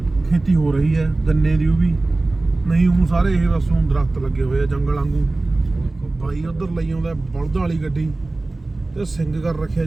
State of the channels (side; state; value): left; quieter; 3.1 dB